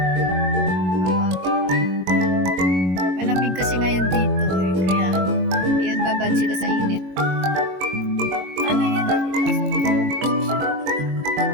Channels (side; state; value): left; late; 22 ms